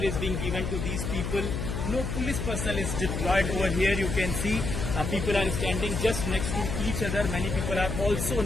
is being given to these people. No police personnel is deployed over here. You can see people are standing just next to each other. Many people are also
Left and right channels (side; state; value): left; noise; hum, 3 dB below the sound